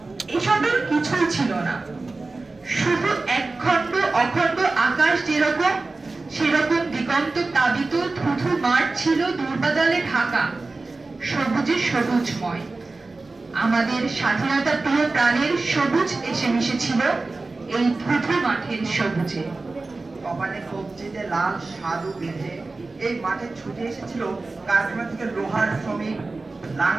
এসবের কিছুই ছিল না। শুধু একখণ্ড অখণ্ড আকাশ যেরকম, সেরকম দিগন্ত তাবিত থুথু মাঠ ছিল দুর্বাদলে ঢাকা, সবুজে সবুজময়। আমাদের স্বাধীনতা প্রিয় প্রাণের সবুজ এসে মিশেছিল এই থুথু মাঠের সবুজে। কপালে কবজিতে লাল সাধু বেঁধে এই মাঠে ছুটে এসেছিল কারখানা থেকে লোহার শ্রমিক,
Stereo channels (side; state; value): left; quieter; 3.5 dB